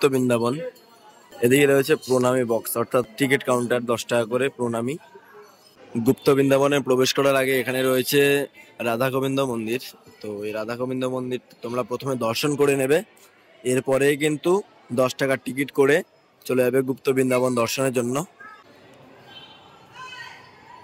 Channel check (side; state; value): both; identical; correlation 1.00